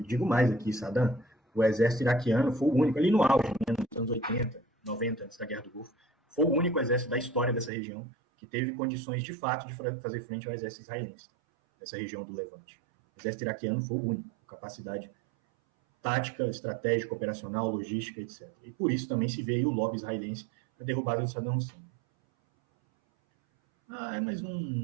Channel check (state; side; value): drops out; left; at 7.7 s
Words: digo mais aqui, Saddam, o exército iraquiano foi o único, ali no auge, né, nos anos 80, 90, antes da Guerra do Golfo, foi o único exército da história dessa região que teve condições de fato de fazer frente ao exército israelense, dessa região do Levante. O exército iraquiano foi o único, com capacidade tática, estratégica, operacional, logística, etc. E por isso também se vê aí o lobby israelense para derrubar o Saddam Hussein. Mas